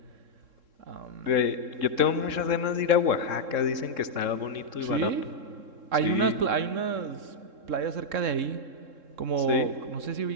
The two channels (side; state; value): left; late; 3.7 ms